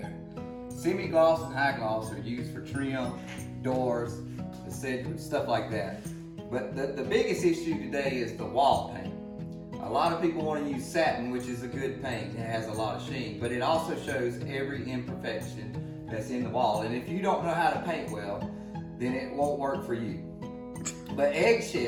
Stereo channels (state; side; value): identical; both; correlation 1.00